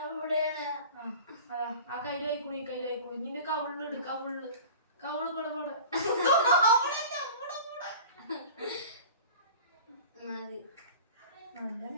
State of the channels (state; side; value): inverted; both; correlation -0.39